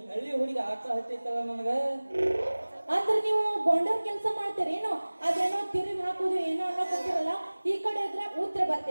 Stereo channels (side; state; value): both; inverted; correlation -1.00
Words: ಹಳ್ಳಿ ಹುಡುಗಿ ಆಟ ಹತ್ತೈತಲ್ಲ ನನಗ ಅಂದ್ರೆ ನೀವು ಗೊಂಡರ್ ಕೆಲಸ ಮಾಡ್ತೀರೇನೋ ಅದೇನೋ ತಿರುಗಿ ಹಾಕುದು ಏನೋ ಅನ್ನೋಕೊಂತಿರಲ್ಲ ಈ ಕಡೆ ಹೋದ್ರೆ ಉತ್ತರ